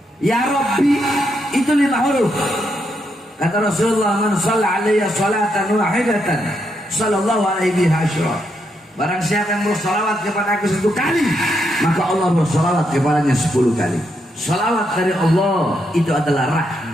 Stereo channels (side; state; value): both; normal; correlation 0.79